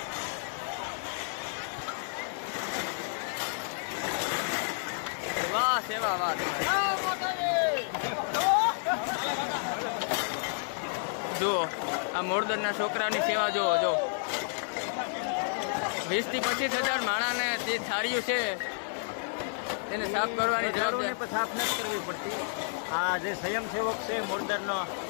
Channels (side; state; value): right; silent; 57 dB below the other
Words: વાહ સેવા વાહ. જુઓ આ મોરદરના છોકરાની સેવા જુઓ. જો 20 થી 25,000 માણાને જે થાળીઓ છે તેને સાફ કરવાની જવાબદારી સાફ નથી કરવી પડતી. આ જે સ્વયંસેવક છે મોરદરનો